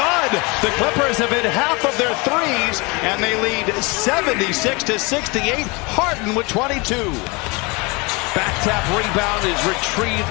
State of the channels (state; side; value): quieter; right; 27.4 dB